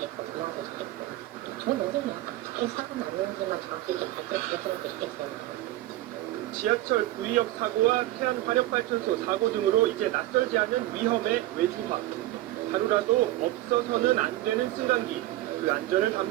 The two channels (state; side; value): quieter; left; 16.1 dB